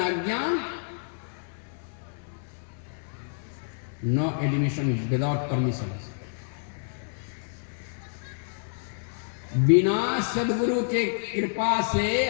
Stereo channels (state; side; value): silent; right; 59 dB below the other